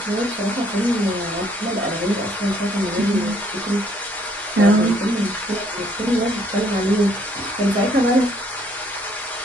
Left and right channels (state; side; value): normal; both; correlation 0.66